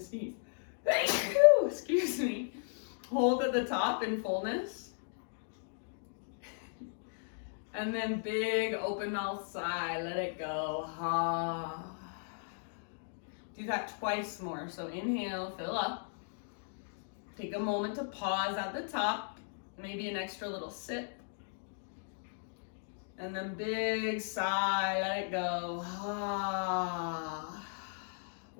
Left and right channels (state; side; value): silent; right; digital silence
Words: sneeze. Excuse me. Hold at the top in fullness. And then big open mouth sigh, let it go. Ha. Do that twice more. So inhale, fill up. Take a moment to pause at the top, maybe an extra little sip. And then big sigh, let it go. Ha.